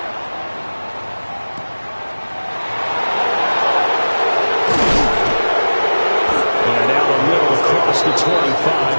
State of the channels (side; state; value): both; inverted; correlation -1.00